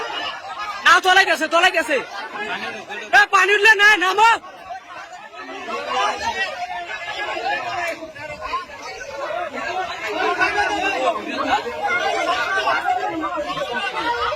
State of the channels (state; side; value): identical; both; correlation 1.00